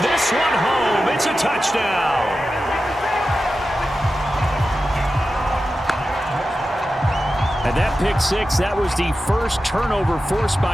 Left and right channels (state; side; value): normal; both; correlation 0.92